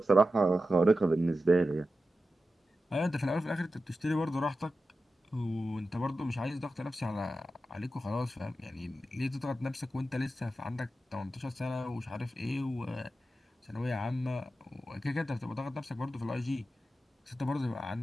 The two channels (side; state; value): both; normal; correlation 0.91